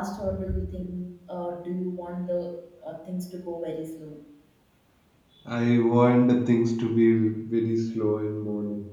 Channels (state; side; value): identical; both; correlation 1.00